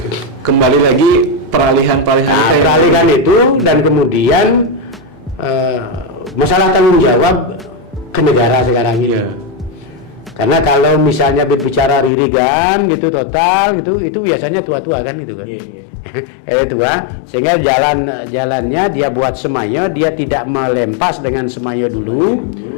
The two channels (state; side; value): drops out; right; at 12.1 s